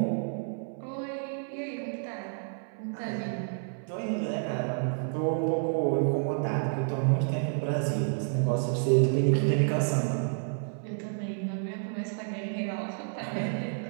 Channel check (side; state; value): left; silent; 58 dB below the other